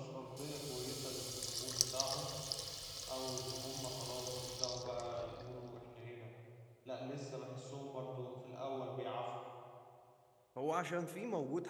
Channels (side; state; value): both; identical; correlation 1.00